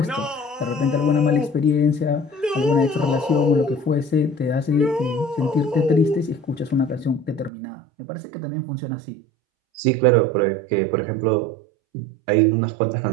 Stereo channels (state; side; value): drops out; left; at 7.5 s